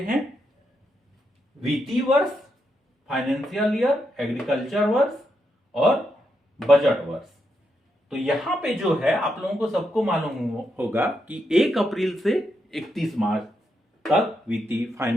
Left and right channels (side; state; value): both; normal; correlation 0.82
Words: वित्तीय वर्ष, फाइनेंशियल ईयर, एग्रीकल्चर वर्ष और बजट वर्ष। तो यहां पे जो है आप लोगों को सबको मालूम होगा कि 1 अप्रैल से 31 मार्च तक वित्तीय